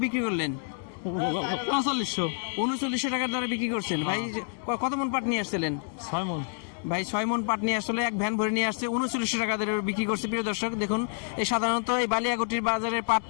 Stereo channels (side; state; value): right; silent; 59 dB below the other